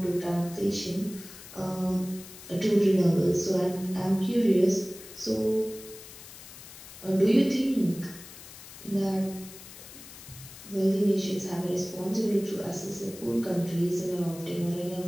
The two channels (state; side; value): noise; left; hiss, 16 dB below the sound